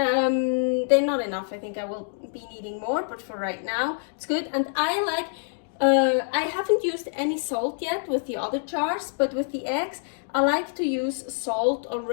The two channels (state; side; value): silent; right; digital silence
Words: not enough. I think I will be needing more, but for right now it's good. And I like I haven't used any salt yet with the other jars, but with the eggs I like to use salt